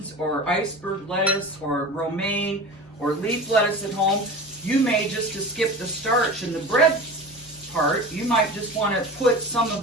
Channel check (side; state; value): both; normal; correlation 0.33